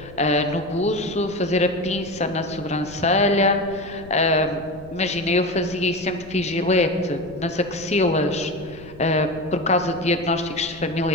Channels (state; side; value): noise; left; rumble, 19 dB below the sound